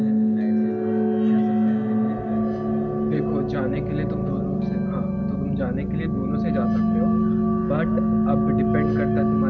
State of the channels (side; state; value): both; identical; correlation 1.00